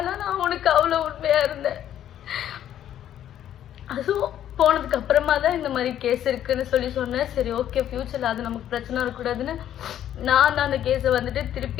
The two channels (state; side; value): quieter; right; 11.0 dB